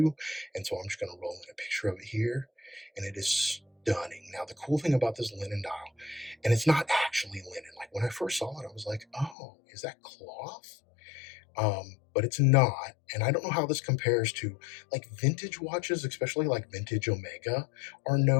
and so I'm just going to roll in a picture of it here, and it is stunning. Now, the cool thing about this Linen dial, and it's not actually linen. Like, when I first saw it, I was like, oh, is that cloth? But it's not, and I don't know how this compares to, like, vintage watches, especially like vintage Omega, are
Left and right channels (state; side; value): drops out; right; at 9.3 s